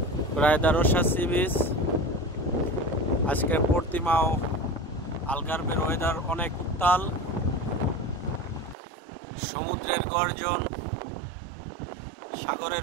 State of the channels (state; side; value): drops out; left; at 8.8 s